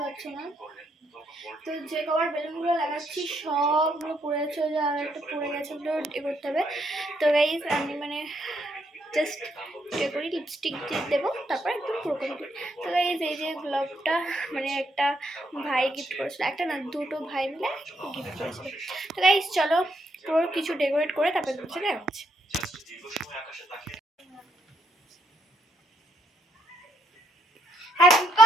পারছো না। তো যে কভার বেলুনগুলো লাগাচ্ছি সবগুলো পড়ে যাচ্ছে, ওই যে আর একটা পড়ে গেছে, ওগুলো এ করতে হবে। তো গাইজ আমি মানে জাস্ট এ করি, লিপস্টিক দিয়ে দেবো, তারপর একদম পুরো কমপ্লিট। তো গাইজ এই যে গ্লোভটা মানে একটা ভাই গিফট করেছিল, একটা না দুটো ভাই মিলে গিফট করেছিল। তো গাইজ চলো পুরো কিছু ডেকোরেট করে তারপর চলে যাচ্ছে। Happy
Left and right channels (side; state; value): both; normal; correlation 0.75